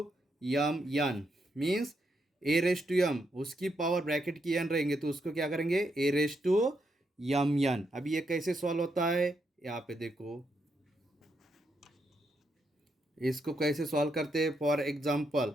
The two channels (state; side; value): normal; both; correlation 0.80